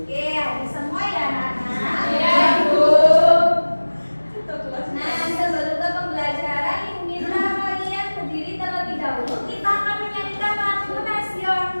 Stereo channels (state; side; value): inverted; both; correlation -1.00